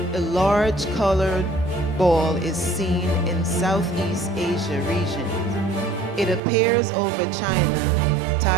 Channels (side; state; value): left; drops out; at 6.4 s